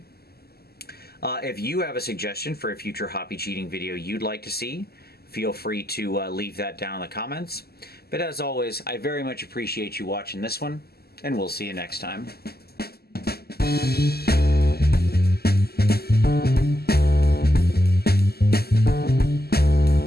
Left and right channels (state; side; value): late; right; 0.46 ms